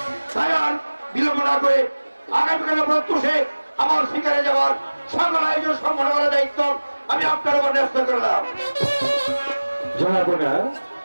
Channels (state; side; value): inverted; both; correlation -1.00